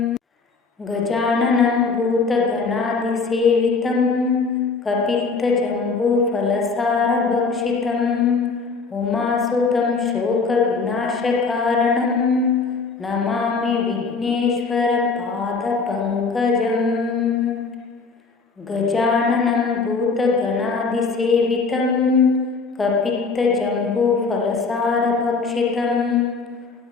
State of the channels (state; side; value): quieter; right; 4.5 dB